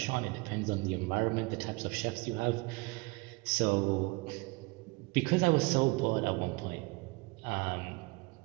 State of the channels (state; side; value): quieter; left; 25.7 dB